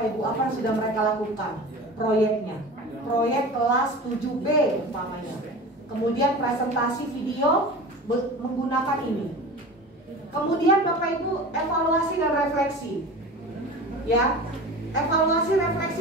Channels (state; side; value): normal; both; correlation 0.34